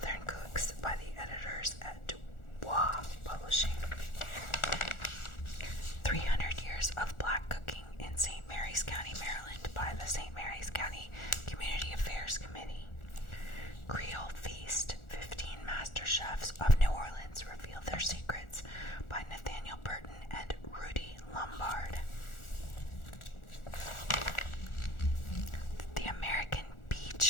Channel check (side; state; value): right; late; 1.4 ms